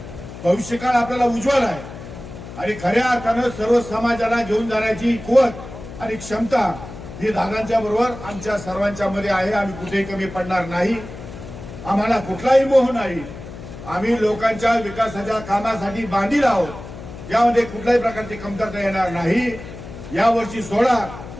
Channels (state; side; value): noise; left; hum, 13 dB below the sound